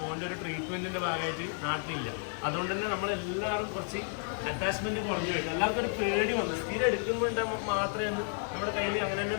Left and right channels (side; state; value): right; silent; 56 dB below the other